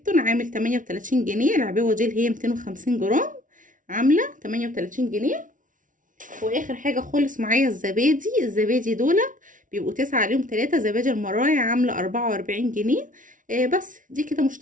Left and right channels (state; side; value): late; left; 0.38 ms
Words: عامل 38 جنيه. العبوه دي اللي هي 250 جرام عامله 38 جنيه. واخر حاجه خالص معايا الزبادي دولت بيبقوا 9 عليهم 3. زبادي المراعي عامله 44 جنيه. بس دي كده